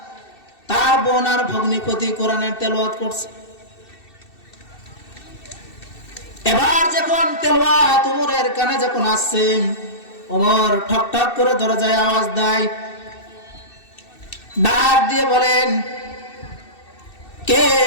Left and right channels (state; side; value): late; right; 2.7 ms